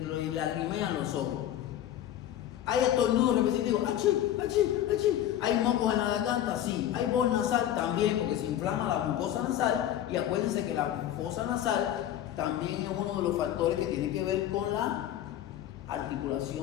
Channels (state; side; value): quieter; right; 11.6 dB